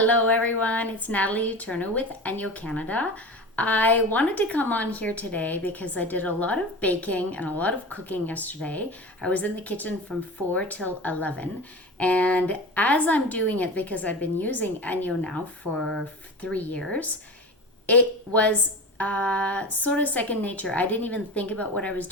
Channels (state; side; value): normal; both; correlation 0.30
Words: everyone, it's Natalie Eterno with ENJO Canada. I wanted to come on here today because I did a lot of baking and a lot of cooking yesterday. I was in the kitchen from 4 till 11, and as I'm doing it, because I've been using ENJO now for 3 years, it was sort of second nature. I didn't even think about what I was